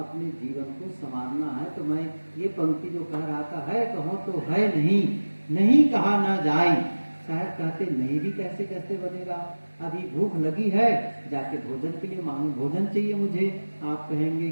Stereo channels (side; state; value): both; inverted; correlation -1.00